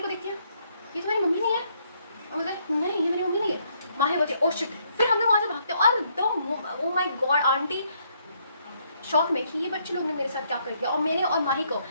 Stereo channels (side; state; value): both; inverted; correlation -0.71